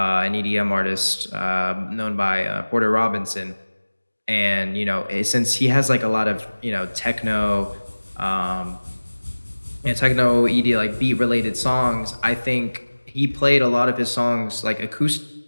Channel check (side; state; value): both; inverted; correlation -1.00